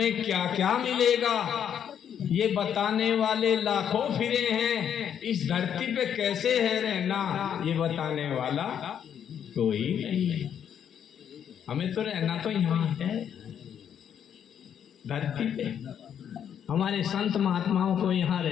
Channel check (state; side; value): quieter; right; 8.8 dB